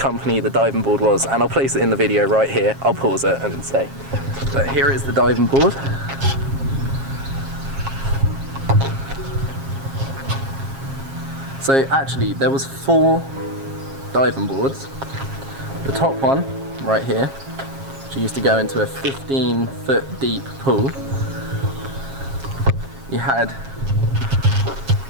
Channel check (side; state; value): left; late; 7.4 ms